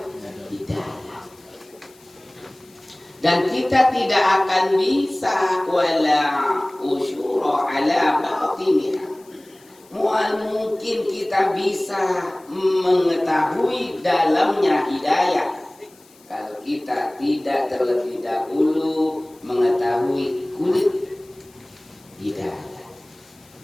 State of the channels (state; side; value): noise; left; hiss, 28 dB below the sound